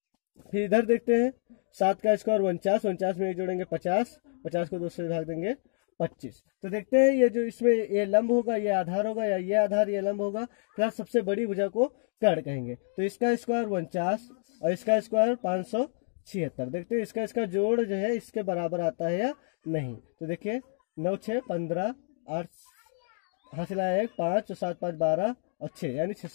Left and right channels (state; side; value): silent; right; digital silence